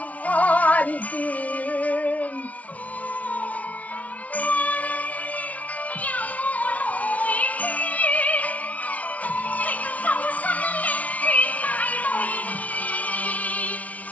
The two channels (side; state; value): right; late; 0.069 ms